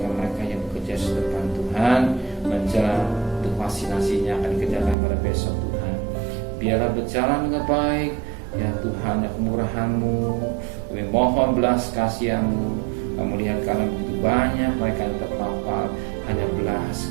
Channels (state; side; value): drops out; left; at 5.0 s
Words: yang bekerja di depan Tuhan, menjelang untuk vaksinasinya akan dikerjakan pada besok Tuhan. Biarlah berjalan dengan baik, ya Tuhan, ya kemurahan-Mu, kami mohon belas kasihan-Mu. Kamu lihat karena begitu banyak mereka yang terpapar, hanya